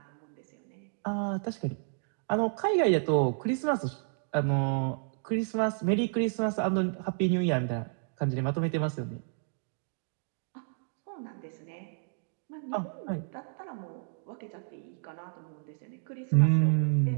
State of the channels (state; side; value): silent; left; digital silence